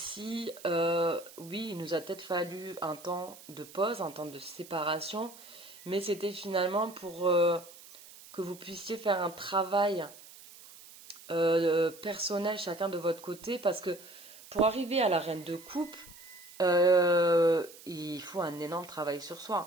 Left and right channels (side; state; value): right; noise; hiss, 19 dB below the sound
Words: oui, il nous a peut-être fallu un temps de pause, un temps de séparation, mais c'était finalement pour que vous puissiez faire un travail personnel chacun de votre côté, parce que pour arriver à la reine de coupe, il faut un énorme travail sur